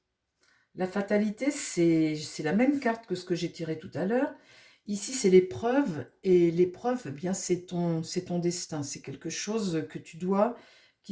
La fatalité, c'est la même carte que ce que j'ai tiré tout à l'heure. Ici, c'est l'épreuve, et l'épreuve, eh bien, c'est ton destin. C'est quelque chose que tu dois,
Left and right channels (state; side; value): identical; both; correlation 1.00